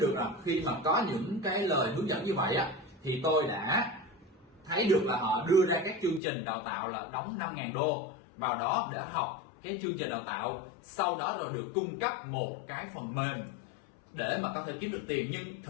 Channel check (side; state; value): right; drops out; at 6.2 s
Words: được là khi mà có những cái lời hướng dẫn như vậy á, thì tôi đã thấy được là họ đưa ra các chương trình đào tạo là đóng 5.000 đô vào đó để học cái chương trình đào tạo, sau đó là được cung cấp một cái phần mềm để mà có thể kiếm được tiền, nhưng